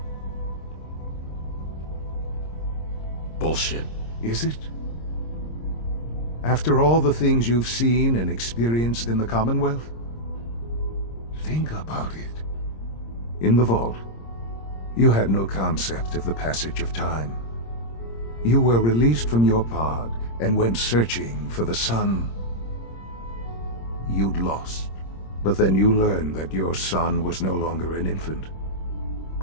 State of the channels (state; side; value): late; right; 26 ms